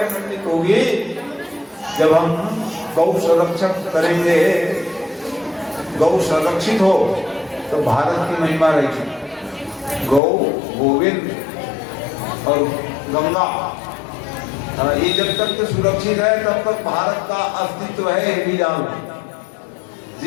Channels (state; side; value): drops out; right; at 10.2 s